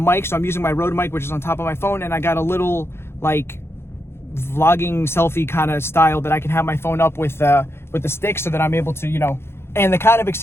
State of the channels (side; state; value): right; late; 0.12 ms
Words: so I'm using my Rode mic, which is on top of my phone, and I got a little like vlogging selfie kind of style that I can have my phone up with the stick, so that I'm able to, you know. And the kind of